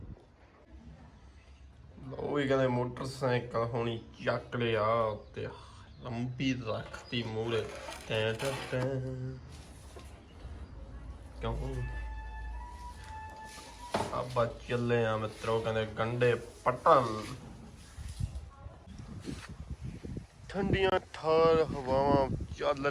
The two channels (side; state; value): both; identical; correlation 1.00